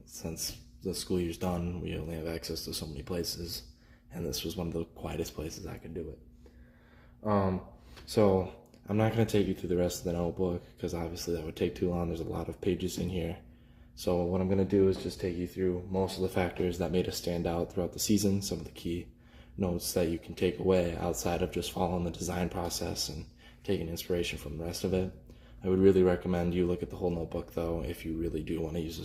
Since the school year's done, we only have access to so many places, and this was one of the quietest places I could do it. So I'm not going to take you through the rest of the notebook because obviously that would take too long. There's a lot of pages in here. So what I'm going to do is just take you through most of the factors that made us stand out throughout the season, some of the key notes that you can take away outside of just following the design process and taking inspiration from the rest of it. I would really recommend you look at the whole notebook though if you really do want to use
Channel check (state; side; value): identical; both; correlation 1.00